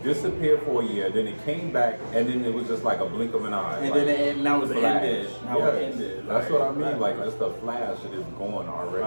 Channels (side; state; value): both; inverted; correlation -1.00